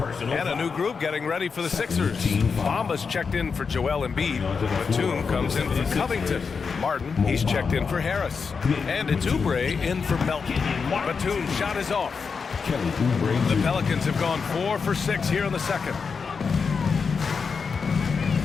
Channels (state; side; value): quieter; right; 5.4 dB